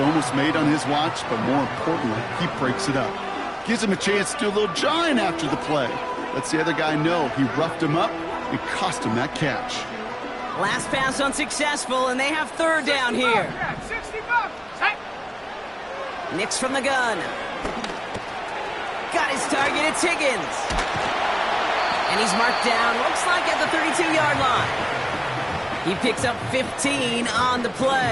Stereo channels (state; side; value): identical; both; correlation 1.00